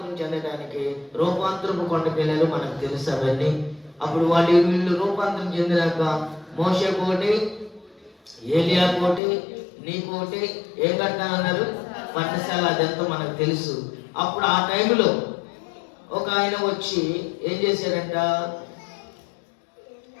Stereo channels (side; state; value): right; drops out; at 9.2 s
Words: చెందడానికి రూపాంతరపు కొండకి వెళ్ళారు. మనకు తెలుసు అవన్నీ. అప్పుడు వీళ్ళు రూపాంతరం చెందినాక మోషే కోటి, ఏలియా కోటి, నీ కోటి ఏం కట్టాలన్నారు? పర్ణశాల. అదంతా మనకు తెలుసు. అప్పుడు ఆ టైంలో ఒక ఆయన వచ్చి ఏం చేశాడంట?